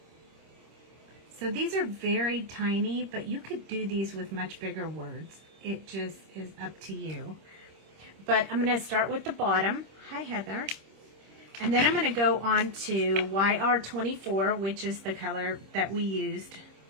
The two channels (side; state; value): left; late; 26 ms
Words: So these are very tiny, but you could do these with much bigger words. It just is up to you. But I'm going to start with the bottom. Hi, Heather. And then I'm going to go on to YR24, which is the color that we used